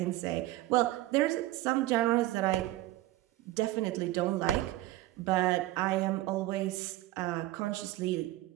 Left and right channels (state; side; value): quieter; left; 16.7 dB